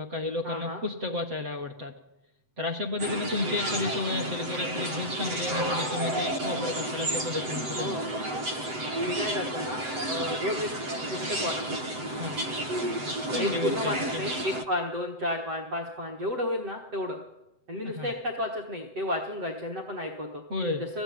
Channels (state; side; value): late; left; 7.9 ms